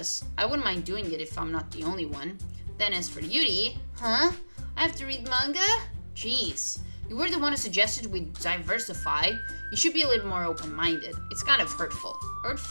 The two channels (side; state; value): both; inverted; correlation -1.00